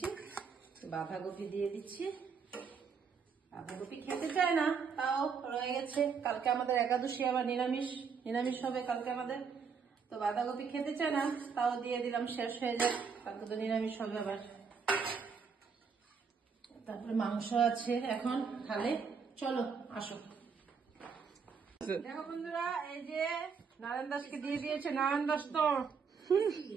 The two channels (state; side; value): quieter; left; 5.9 dB